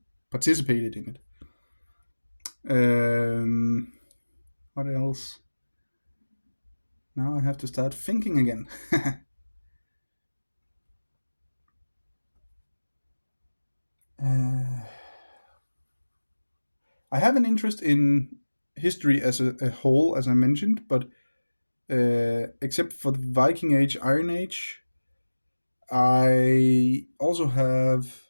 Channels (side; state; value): both; inverted; correlation -1.00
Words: participated in it. What else? Now I have to start thinking again. uh, I have an interest in history as a whole, as I mentioned, but except for the Viking Age, Iron Age, I also have